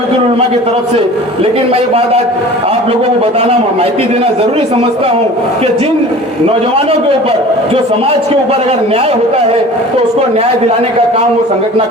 उलमा की तरफ से, लेकिन मैं ये बात आज आप लोगों को बताना, माहिती देना जरूरी समझता हूं कि जिन नौजवानों के ऊपर, जो समाज के ऊपर अगर न्याय होता है तो उसको न्याय दिलाने का काम वो संगठन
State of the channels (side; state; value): both; normal; correlation 0.42